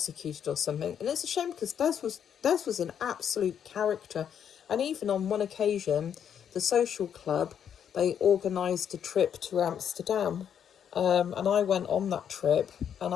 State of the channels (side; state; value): right; quieter; 8.6 dB